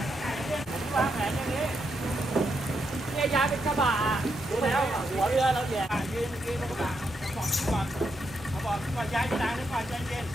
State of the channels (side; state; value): both; normal; correlation 0.81